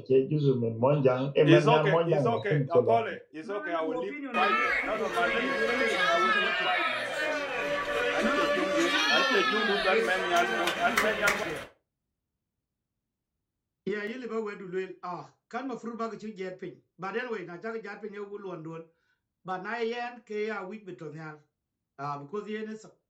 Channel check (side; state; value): both; identical; correlation 1.00